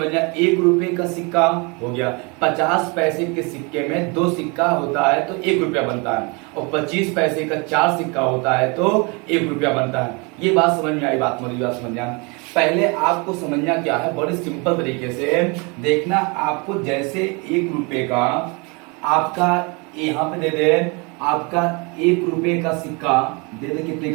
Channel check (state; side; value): quieter; left; 30.1 dB